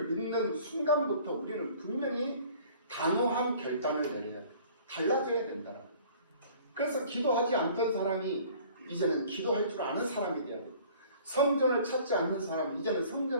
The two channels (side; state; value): both; inverted; correlation -0.51